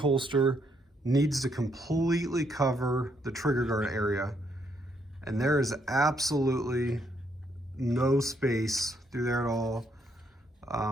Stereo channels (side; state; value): both; normal; correlation 0.73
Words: needs to completely cover the trigger guard area. And there is absolutely no space through there at all.